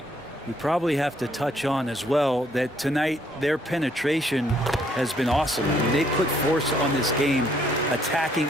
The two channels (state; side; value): normal; both; correlation 0.68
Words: We probably have to touch on as well that tonight their penetration has been awesome. I mean, they put force on this game, attacking